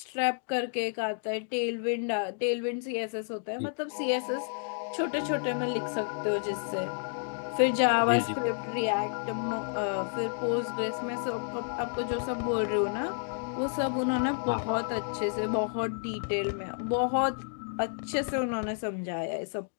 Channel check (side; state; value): right; silent; digital silence